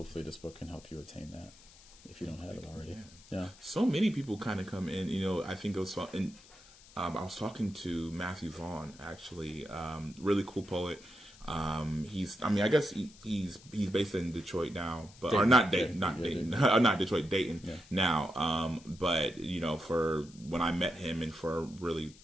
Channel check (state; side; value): noise; left; hiss, 23 dB below the sound